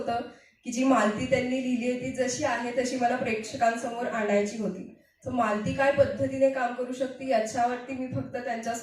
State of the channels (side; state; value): both; identical; correlation 1.00